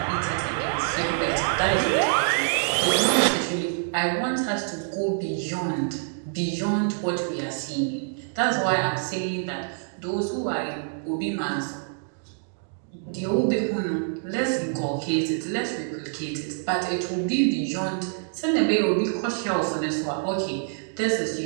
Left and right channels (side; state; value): left; silent; digital silence